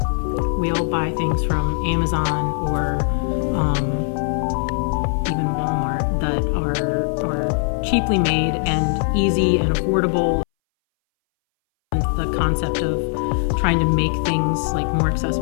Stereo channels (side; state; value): right; silent; 62 dB below the other